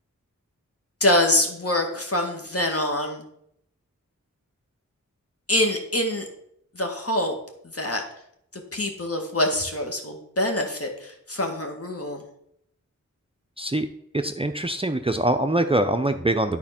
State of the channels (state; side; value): normal; both; correlation 0.09